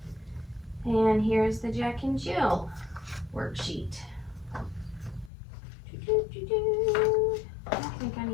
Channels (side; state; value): right; drops out; at 5.3 s